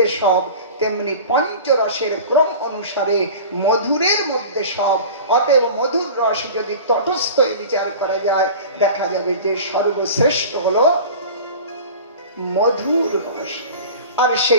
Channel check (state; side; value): inverted; both; correlation -0.37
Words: সব, তেমনি পঞ্চরসের ক্রম অনুসারে মধুরের মধ্যে সব। অতএব মধুর রস যদি তটস্থ বিচার করা যায়, দেখা যাবে যে সর্বশ্রেষ্ঠ হলো মধুর রস। আর